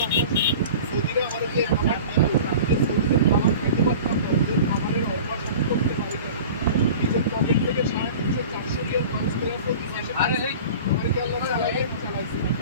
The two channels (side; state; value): both; inverted; correlation -0.39